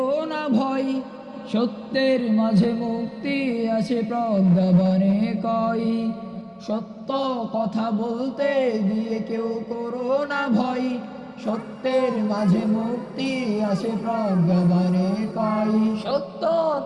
না ভয়, সত্যের মাঝে মুক্তি আছে প্রজ্ঞাবানে কয়। সত্য কথা বলতে গিয়ে কেউ করো না ভয়, সত্যের মাঝে মুক্তি আছে প্রজ্ঞাবানে কয়। সত্য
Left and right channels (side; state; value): both; identical; correlation 1.00